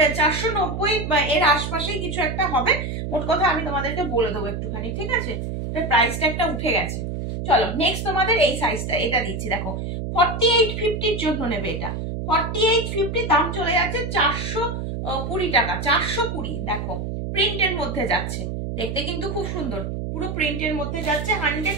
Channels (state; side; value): noise; right; hum, 4 dB below the sound